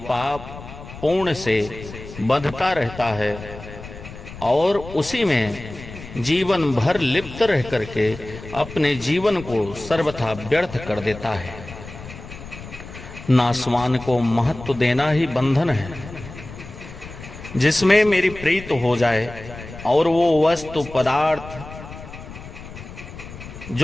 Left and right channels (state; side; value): noise; left; rumble, 14 dB below the sound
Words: पुण्य से बंधता रहता है और उसी में जीवन भर लिप्त रह करके अपने जीवन को सर्वथा व्यर्थ कर देता है। नासवान को महत्व देना ही बंधन है। जिसमें मेरी प्रीत हो जाए और वो वस्तु पदार्थ